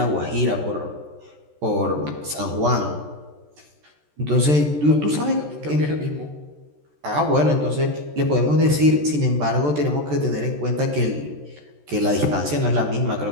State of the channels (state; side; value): late; left; 14 ms